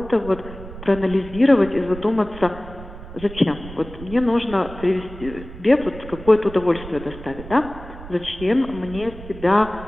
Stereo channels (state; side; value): noise; right; rumble, 14 dB below the sound